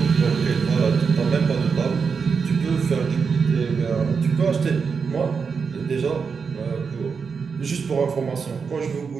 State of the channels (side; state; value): left; quieter; 5.6 dB